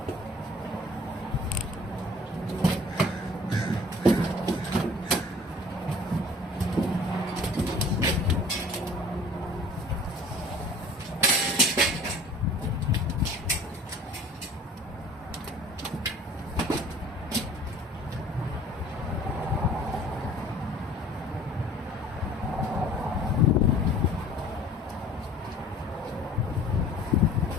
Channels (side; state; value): both; normal; correlation 0.49